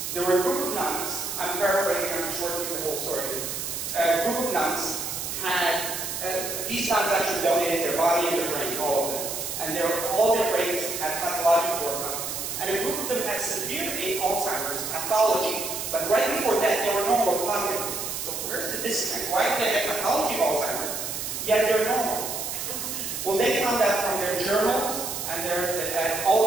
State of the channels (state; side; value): noise; right; hiss, 4 dB below the sound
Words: there were a group of nuns, I'm paraphrasing, I'm shortening the whole story. A group of nuns had, these nuns actually donated their body and their brain, all of them. And all their brains had pathological workup. And a group of them had severe Alzheimer's pathology, but right before that they were normal cognitively. So where's the disconnect? Why do they have pathology of Alzheimer's, yet they're normal? Well, they found out from their journals and